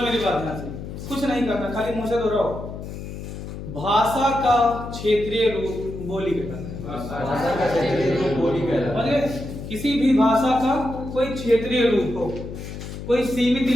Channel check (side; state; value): left; noise; hum, 9 dB below the sound